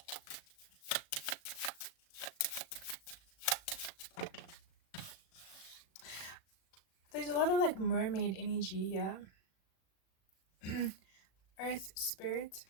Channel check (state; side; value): late; right; 36 ms